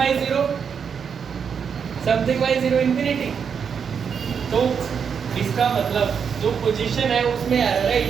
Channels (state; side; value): quieter; left; 6.8 dB